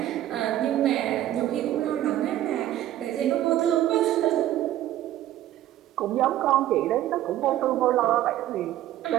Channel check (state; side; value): quieter; left; 13.2 dB